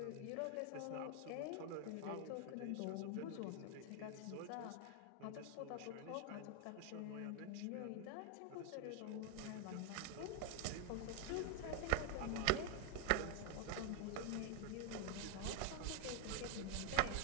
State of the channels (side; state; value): both; different; correlation 0.01